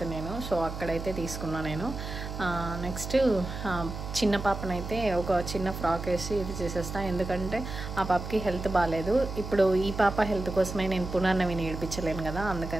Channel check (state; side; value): noise; right; hum, 7 dB below the sound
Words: నేను, సో అక్కడైతే తీసుకున్నా నేను. నెక్స్ట్ చిన్న పాపనైతే ఒక చిన్న ఫ్రాక్ వేసి ఇది చేసేస్తా, ఎందుకంటే ఆ పాపకి హెల్త్ బాగాలేదు. ఇప్పుడు ఈ పాప హెల్త్ కోసమే నేను పునర్నవిని ఏడిపించలేను కదా,